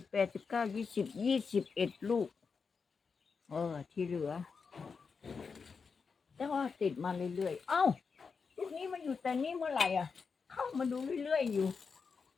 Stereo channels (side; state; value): right; quieter; 5.3 dB